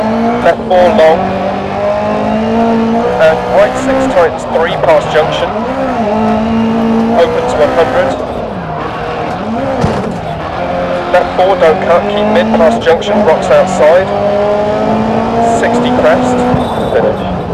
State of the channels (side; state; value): both; identical; correlation 1.00